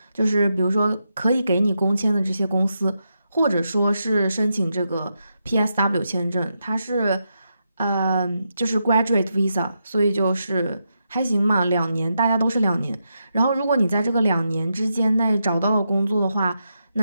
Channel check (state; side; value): inverted; both; correlation -0.85